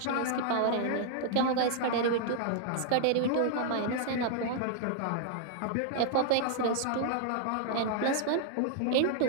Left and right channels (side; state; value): both; different; correlation -0.01